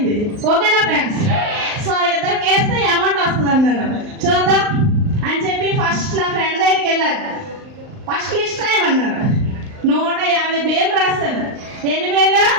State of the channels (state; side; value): late; left; 39 ms